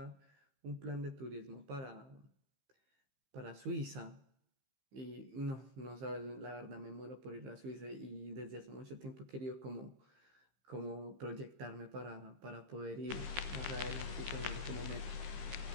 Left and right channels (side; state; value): left; late; 15 ms